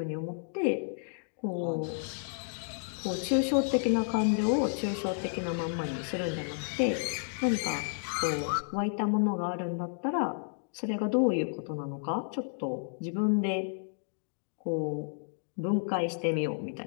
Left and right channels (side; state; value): right; silent; digital silence